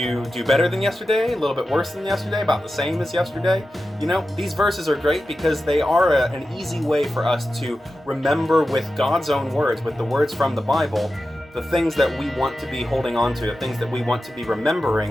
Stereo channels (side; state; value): both; normal; correlation 0.92